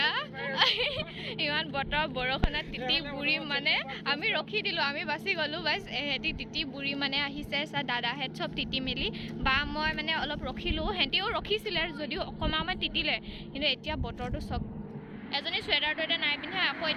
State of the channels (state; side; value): identical; both; correlation 1.00